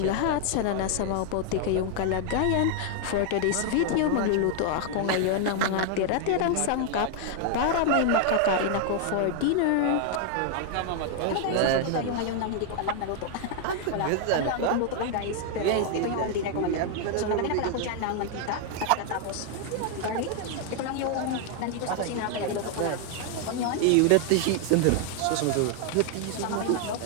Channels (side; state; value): both; different; correlation 0.00